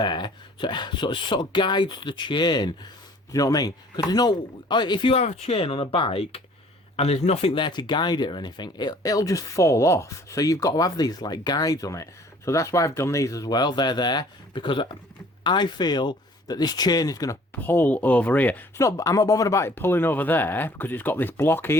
so it sort of guides the chain. Do you know what I mean? Because there's no, if you have a chain on a bike and there's nothing there to guide it or anything, it'll just fall off. So you've got to have these like guides on it. So that's why I've done these as well. They're there because I feel that this chain is going to pull over here. I'm not bothered about it pulling over there because it's got this block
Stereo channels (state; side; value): normal; both; correlation 0.54